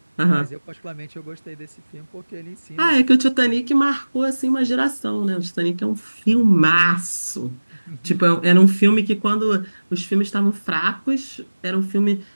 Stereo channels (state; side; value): inverted; both; correlation -1.00